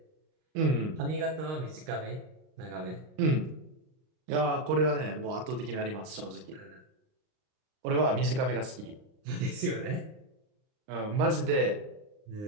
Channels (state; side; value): late; left; 39 ms